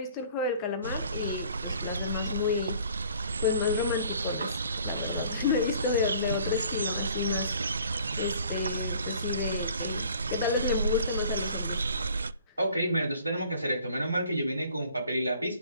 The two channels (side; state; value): both; inverted; correlation -0.54